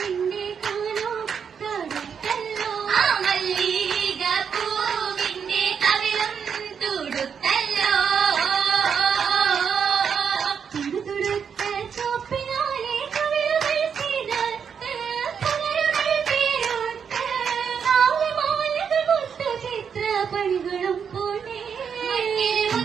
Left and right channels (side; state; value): left; quieter; 7.0 dB